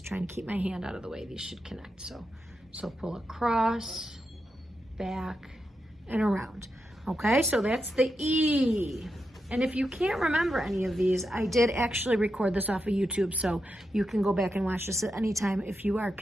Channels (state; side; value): normal; both; correlation 0.87